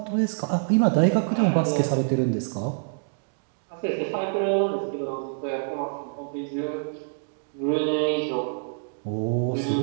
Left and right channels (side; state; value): left; silent; digital silence